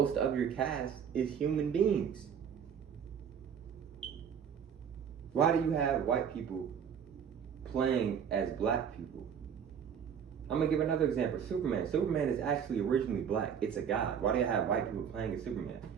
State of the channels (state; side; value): quieter; left; 7.7 dB